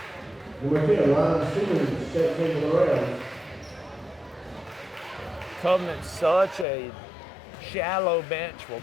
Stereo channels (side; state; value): right; drops out; at 6.7 s